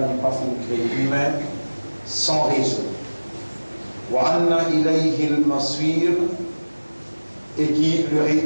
n'est pas fait créer humain sans raison. Wa anna ilayhi al-masir, et qui le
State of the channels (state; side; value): inverted; both; correlation -1.00